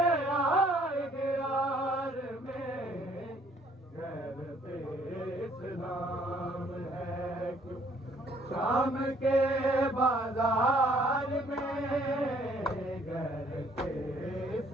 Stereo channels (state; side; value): normal; both; correlation 0.62